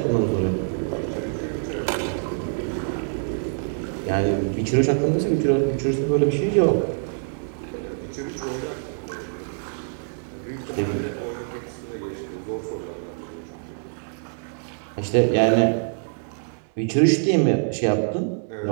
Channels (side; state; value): left; silent; 62 dB below the other